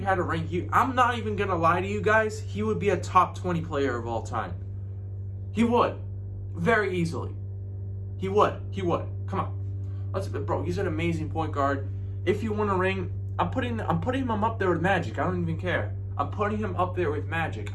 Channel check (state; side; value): identical; both; correlation 1.00